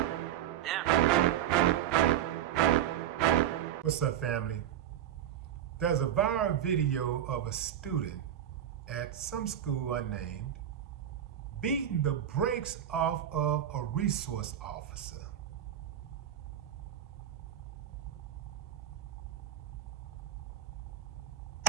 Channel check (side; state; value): left; quieter; 10.6 dB